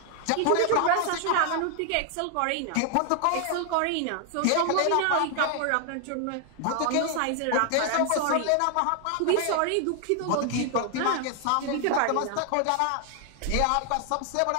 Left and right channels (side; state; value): both; different; correlation 0.00